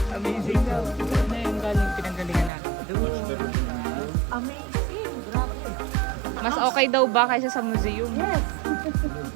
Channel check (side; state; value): left; drops out; at 2.5 s